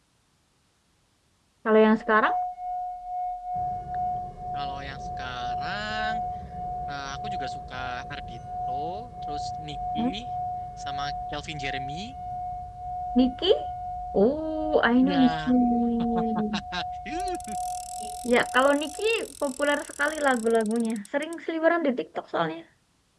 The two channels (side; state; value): both; identical; correlation 1.00